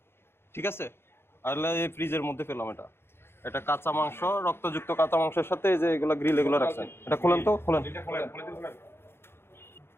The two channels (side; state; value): right; late; 0.11 ms